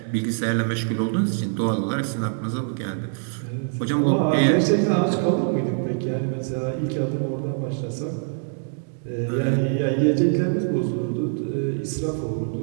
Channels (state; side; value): silent; left; digital silence